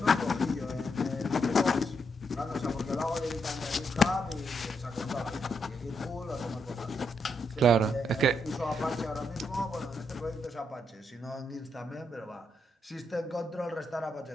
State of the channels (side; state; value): both; normal; correlation 0.79